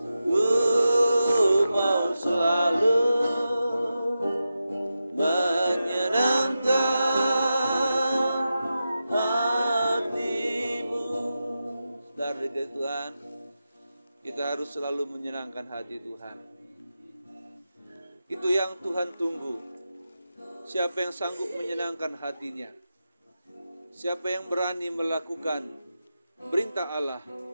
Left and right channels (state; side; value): inverted; both; correlation -0.91